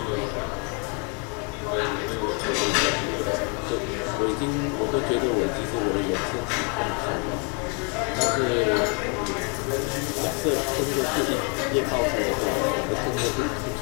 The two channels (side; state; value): right; quieter; 36.3 dB